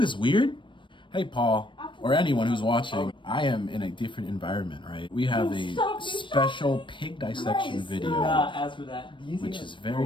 this weird? Hey, Paul, or anyone who's watching, I am in a different environment, right? We have a special pig dissection video, which is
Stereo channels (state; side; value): late; right; 0.24 ms